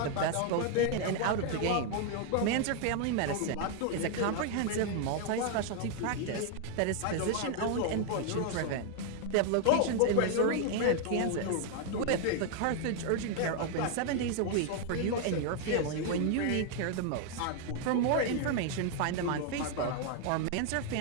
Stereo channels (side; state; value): both; different; correlation 0.00